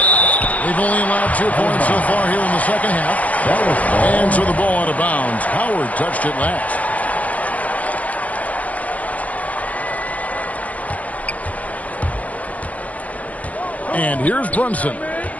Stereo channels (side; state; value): right; late; 0.070 ms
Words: They've only allowed 2 points so far here in the second half. And so the ball out of bounds. Howard touched it last. And here's Brunson.